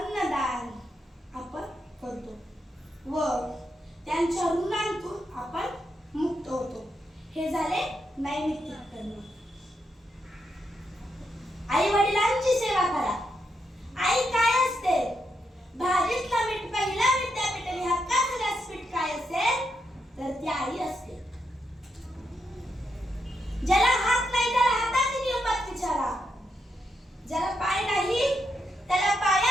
आपण करतो व त्यांच्या ऋणांतून आपण मुक्त होतो. हे झाले नैमित्तिक कर्म. आई वडिलांची सेवा करा. आई काय असते, भाजीतला मीठ पहिला विद्यापीठ आणि हक्काचं व्यासपीठ काय असेल तर ती आई असते. ज्याला हात नाही त्याला हाताची किंमत विचारा. ज्याला पाय नाही त्याला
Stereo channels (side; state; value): both; normal; correlation 0.82